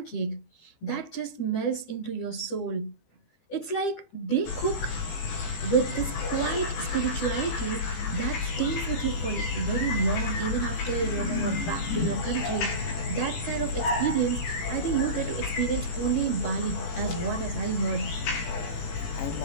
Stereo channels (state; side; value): late; right; 18 ms